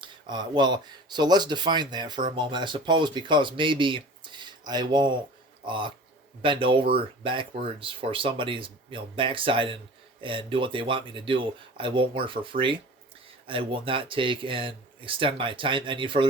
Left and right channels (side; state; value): both; normal; correlation 0.40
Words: So let's define that for a moment. I suppose because maybe I won't bend over backwards for somebody's backside and do what they want me to do. I won't work for free. I will not take and extend my time any